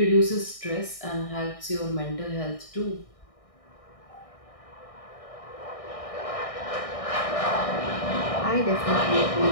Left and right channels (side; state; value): right; late; 1.6 ms